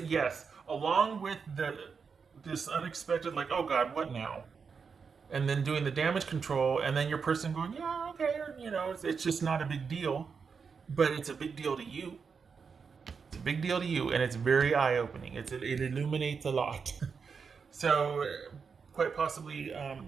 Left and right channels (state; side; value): quieter; left; 5.7 dB